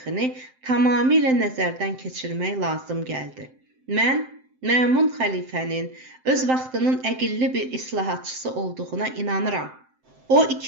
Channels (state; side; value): late; left; 7.7 ms